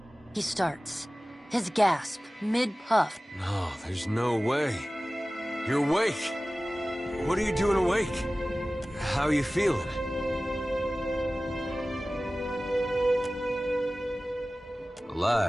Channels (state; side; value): normal; both; correlation 0.97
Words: he starts. His gasp, mid-puff. No, there's no way. You're awake. What are you doing awake? How are you feeling?